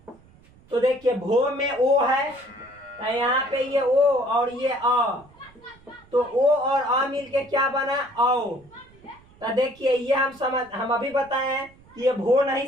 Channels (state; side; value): noise; right; rumble, 27 dB below the sound